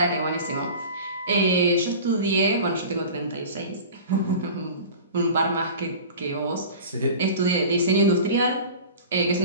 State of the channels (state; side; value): inverted; both; correlation -0.38